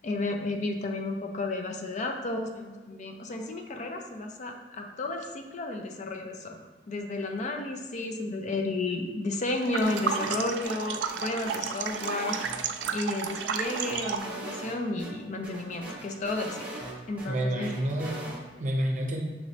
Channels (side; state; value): both; normal; correlation 0.41